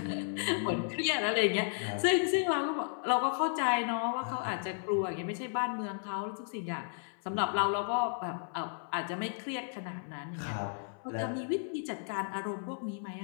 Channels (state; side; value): silent; right; 55 dB below the other